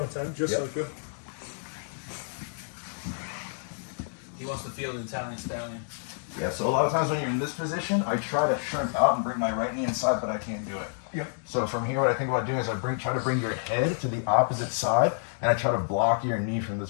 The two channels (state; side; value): silent; right; digital silence